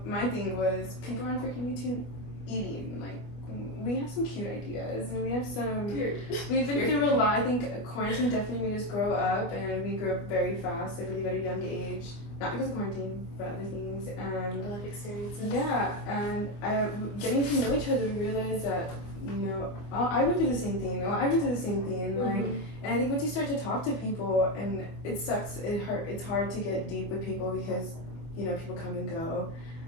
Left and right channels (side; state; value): right; late; 25 ms